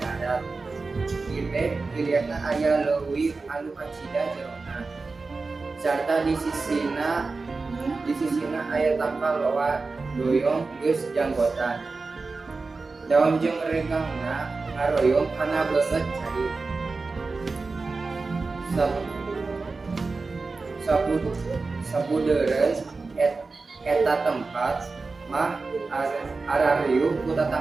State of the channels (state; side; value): quieter; left; 4.0 dB